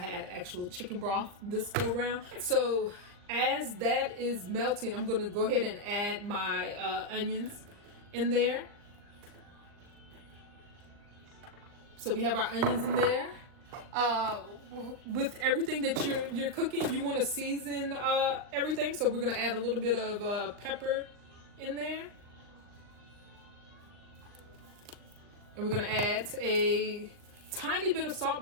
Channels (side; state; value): left; late; 39 ms